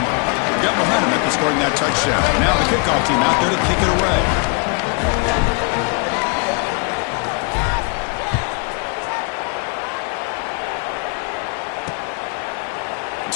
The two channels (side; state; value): right; quieter; 34.5 dB